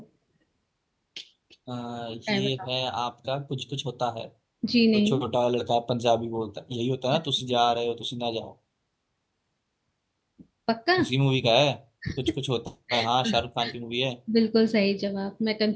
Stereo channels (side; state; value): both; identical; correlation 1.00